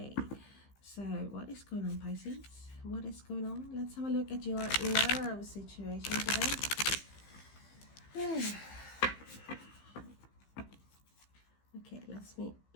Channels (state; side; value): late; right; 15 ms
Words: so what is going on, Pisces? What is going on? Let's have a look at your love situation today. Okay,